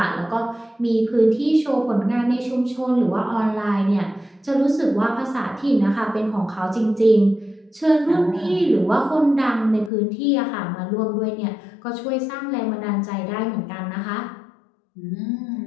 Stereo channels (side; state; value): right; drops out; at 9.9 s